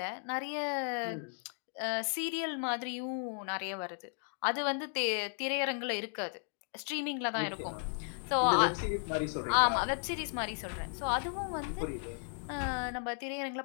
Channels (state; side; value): silent; right; 54 dB below the other